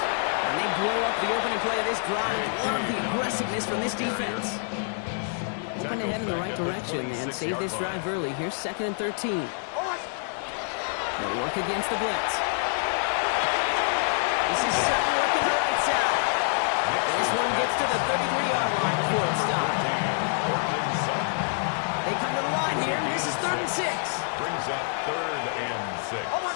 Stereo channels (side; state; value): right; silent; 60 dB below the other